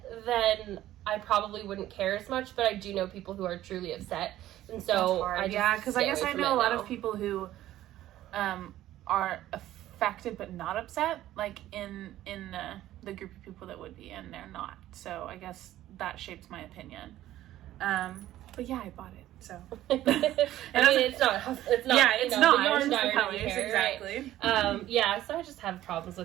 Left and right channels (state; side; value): quieter; left; 13.9 dB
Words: then I probably wouldn't care as much, but I do know people who are truly upset, and so because I guess I know a lot of people who are affected but not upset, like in the group of people that would be, and they're not. So I guess that shapes my opinion. But yeah, I bought it. So I mean, it's not. Yeah, it's not. The yarn it's colors, exactly. Right? Yeah, so I just have problems